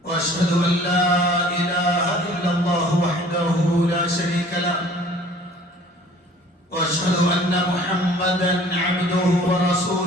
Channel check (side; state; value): both; normal; correlation 0.51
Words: واشهد ان لا اله الا الله وحده لا شريك له، واشهد ان محمدا عبده